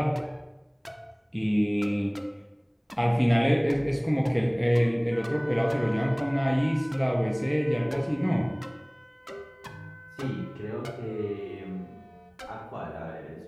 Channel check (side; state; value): both; identical; correlation 1.00